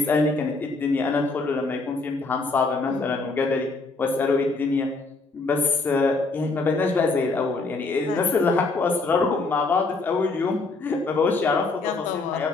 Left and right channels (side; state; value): right; quieter; 3.6 dB